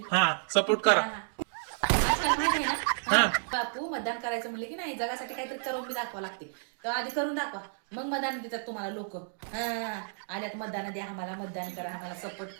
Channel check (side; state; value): left; silent; digital silence